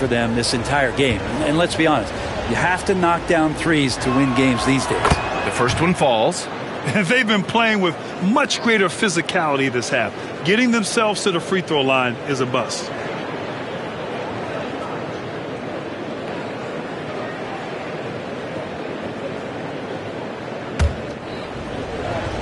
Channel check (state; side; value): identical; both; correlation 1.00